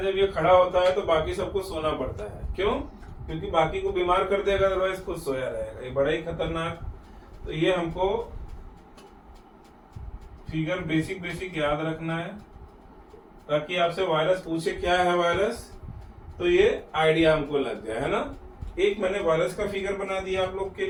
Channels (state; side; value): identical; both; correlation 1.00